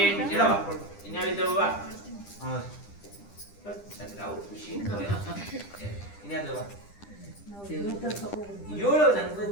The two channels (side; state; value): right; late; 10 ms